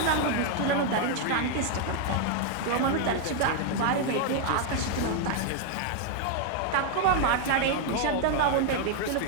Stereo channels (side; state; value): both; different; correlation 0.00